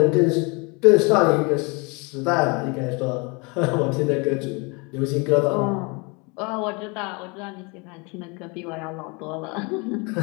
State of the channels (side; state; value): right; quieter; 29.9 dB